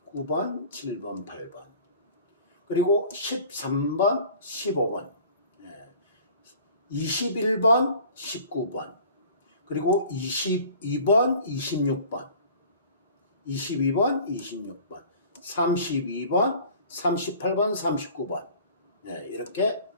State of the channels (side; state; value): both; inverted; correlation -0.47